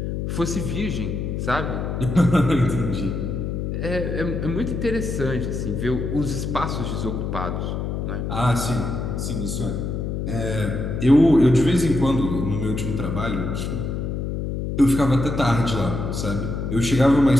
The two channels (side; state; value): left; noise; hum, 3 dB below the sound